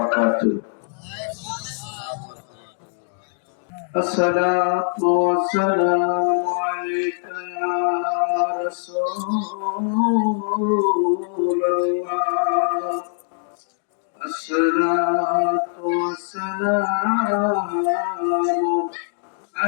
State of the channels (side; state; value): right; silent; digital silence